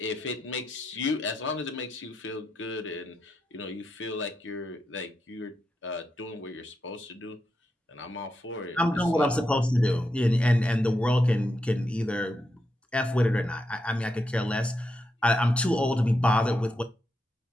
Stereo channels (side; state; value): both; normal; correlation 0.84